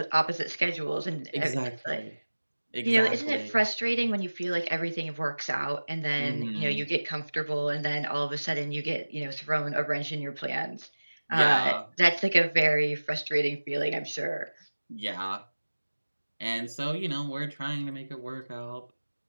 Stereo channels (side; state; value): both; inverted; correlation -1.00